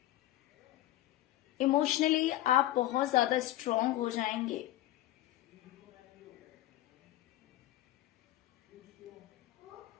इमोशनली आप बहुत ज्यादा स्ट्रांग हो जाएंगे।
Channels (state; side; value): quieter; right; 14.8 dB